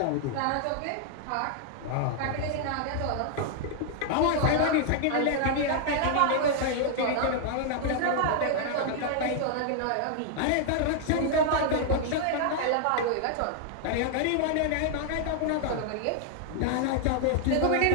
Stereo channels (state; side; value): different; both; correlation 0.00